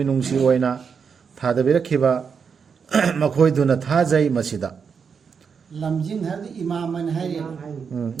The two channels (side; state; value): left; quieter; 6.2 dB